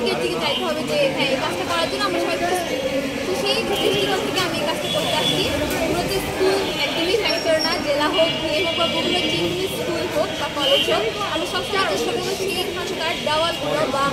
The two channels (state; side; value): identical; both; correlation 1.00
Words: দিকে যাইতে হবে যে হ্যাঁ এই কাজটা করার জন্য আমরা সবাই প্রস্তুত। তো সেই দৃষ্টিকোণ থেকে আমি এই কাজটা করতে আসছি। মূলত স্কুল একদমই ফ্যাক্টর না, জেলা হোক বিয়ে হোক বা বিভিন্ন যে স্কুল হোক বা কলেজ হোক, আমরা সবসময় চেষ্টা করবো সেইখানকার দেওয়ালগুলো বা